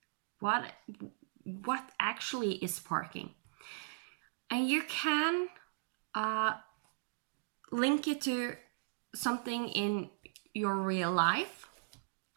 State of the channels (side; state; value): left; silent; digital silence